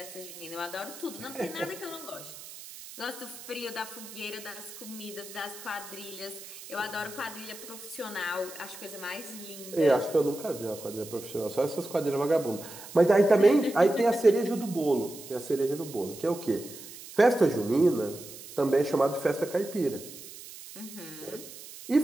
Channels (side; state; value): right; noise; hiss, 15 dB below the sound